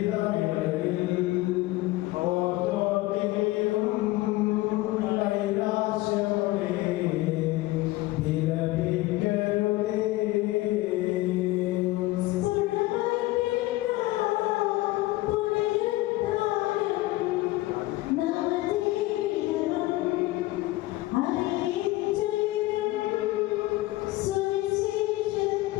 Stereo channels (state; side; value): quieter; right; 18.7 dB